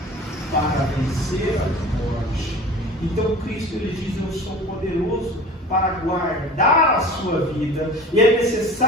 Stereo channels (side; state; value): both; normal; correlation 0.40